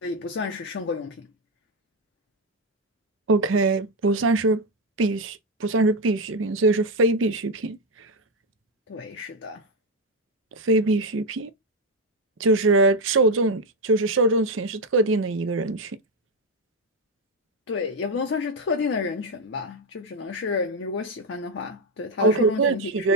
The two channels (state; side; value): normal; both; correlation 0.06